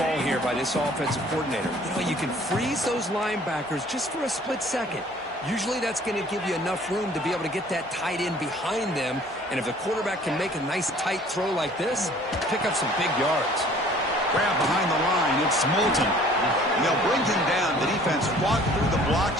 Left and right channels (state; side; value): normal; both; correlation 0.53